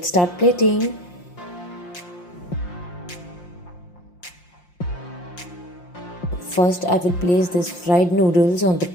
start plating. First, I will place these fried noodles on the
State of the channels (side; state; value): right; late; 5.7 ms